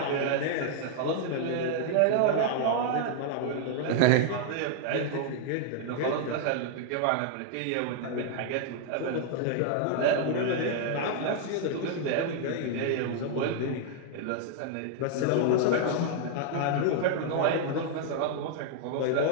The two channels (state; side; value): different; both; correlation 0.00